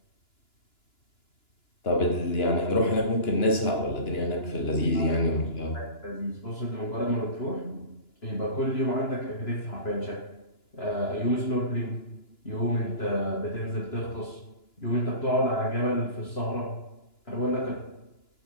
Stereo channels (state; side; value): late; right; 2.9 ms